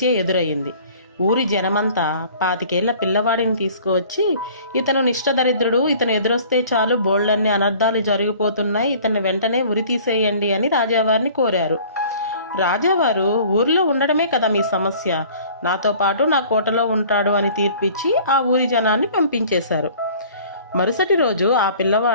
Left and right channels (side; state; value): both; inverted; correlation -0.50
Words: ఎదురయ్యింది. ఊరి జనమంతా 25 పిల్లవాడిని తీసుకువచ్చి, ఇతను నిష్టదరిద్రుడు, ఇతను ఎదురొస్తే చాలు బోళ్ళన్ని అనర్థాలు జరిగిపోతున్నాయి, ఇతన్ని వెంటనే ఉరి తీసేయండి అని రాజావారిని కోరారు. రాజావారు, ఊరిలో ఉండడమే కదా మీ సమస్య, నాతో పాటు నా కోటలో ఉంటాడు అని తీర్పిచ్చి ఆ ఊరి జనాన్ని పంపించేశారు. మరుసటి రోజు ఆ